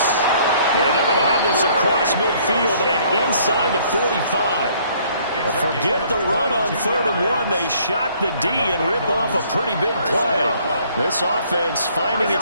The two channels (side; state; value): both; inverted; correlation -0.61